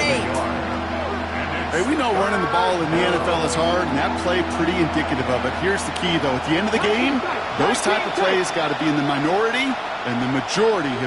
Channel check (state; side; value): identical; both; correlation 1.00